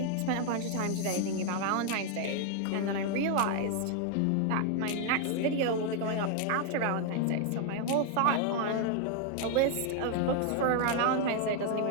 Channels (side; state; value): both; different; correlation 0.00